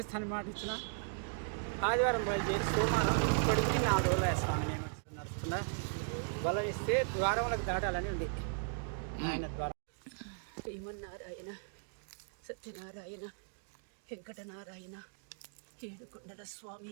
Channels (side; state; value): left; silent; digital silence